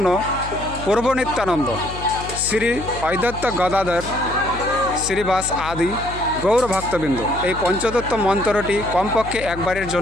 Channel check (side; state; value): left; noise; hum, 11 dB below the sound